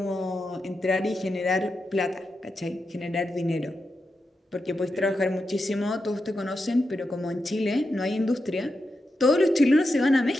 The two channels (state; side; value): normal; both; correlation 0.88